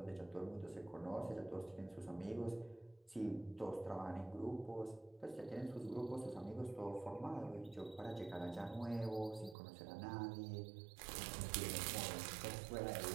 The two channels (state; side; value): drops out; left; at 9.6 s